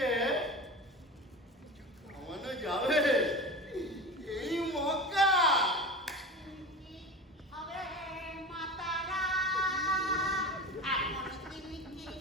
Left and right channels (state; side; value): normal; both; correlation 0.31